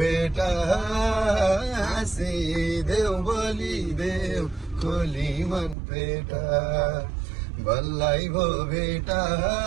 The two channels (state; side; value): drops out; left; at 5.8 s